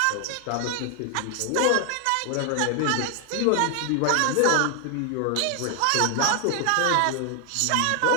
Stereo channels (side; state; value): both; different; correlation 0.00